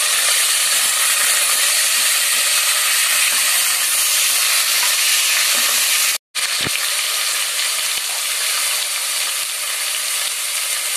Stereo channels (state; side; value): identical; both; correlation 1.00